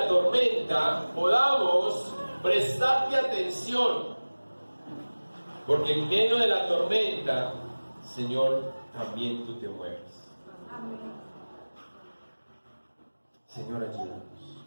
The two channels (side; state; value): both; inverted; correlation -1.00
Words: tormenta podamos prestarte atención, porque en medio de la tormenta, Señor, también tú te mueves. Amén. Señor, ayúdanos.